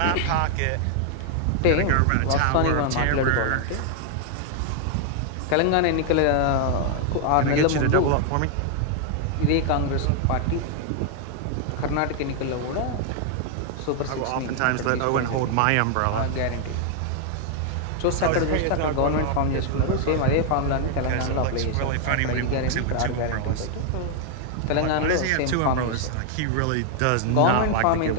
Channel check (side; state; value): both; different; correlation 0.00